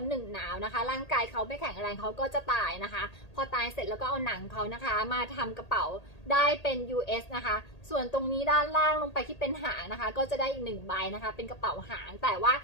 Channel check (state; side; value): late; right; 1.8 ms